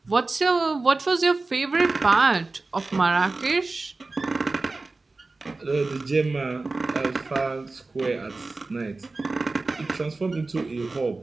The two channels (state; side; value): quieter; left; 3.5 dB